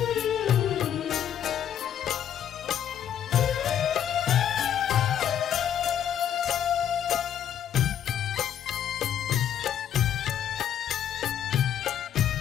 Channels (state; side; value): quieter; right; 9.7 dB